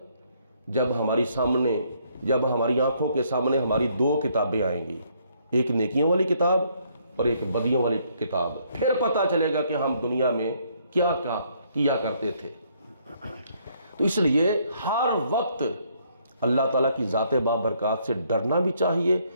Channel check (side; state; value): both; inverted; correlation -0.68